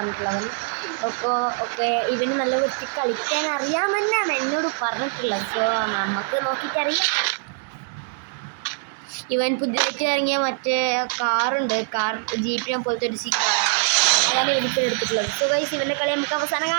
ഒക്കെ ഇവന് നല്ല വൃത്തി കളിക്കാൻ അറിയാമെന്നാണ് എന്നോട് പറഞ്ഞിട്ടുള്ളത്. സോ നമുക്ക് നോക്കിയിട്ടറിയാം. ഇവൻ പുതിയതായിട്ട് ഇറങ്ങിയ മറ്റേ കാറുണ്ട്, ജീപ്പിനെ പോലത്തെ ഒരു കാറാണ്, അതാണ് ഇവനിപ്പോൾ എടുത്തിട്ടുള്ളത്. സോ ഗൈസ്, ഇവൻ്റെ കളി നമുക്ക് അവസാനം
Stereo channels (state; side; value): silent; left; 63 dB below the other